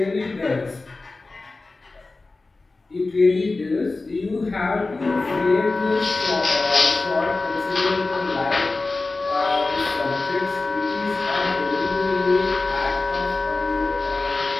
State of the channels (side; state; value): right; quieter; 3.4 dB